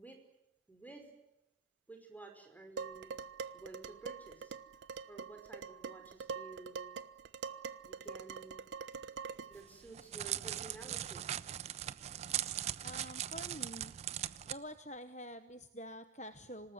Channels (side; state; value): left; quieter; 7.3 dB